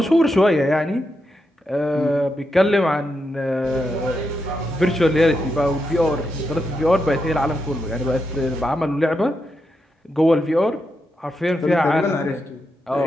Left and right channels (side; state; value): both; normal; correlation 0.85